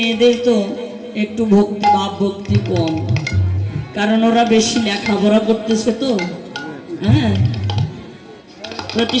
তো একটু ভক্তি ভাব ভক্তি কম, কারণ ওরা বেশি লেখাপড়া করতেছে তো। হ্যাঁ,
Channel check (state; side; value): identical; both; correlation 1.00